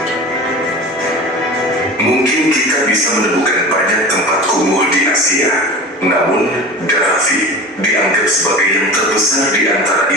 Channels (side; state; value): both; normal; correlation 0.34